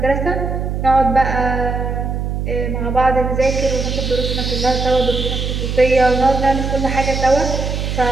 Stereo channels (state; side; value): noise; right; hum, 2 dB below the sound